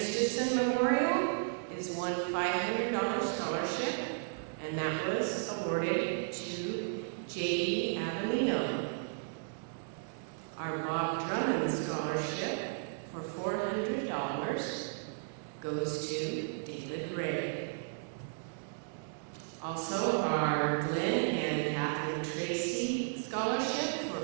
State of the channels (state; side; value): silent; left; digital silence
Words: Memorial is one $500 scholarship, and that was awarded to J.D. Avellino. Our Bob Drummond Scholarship for $400 goes to David Ray. Also, our Glenn and Catherine Tracy Scholarship for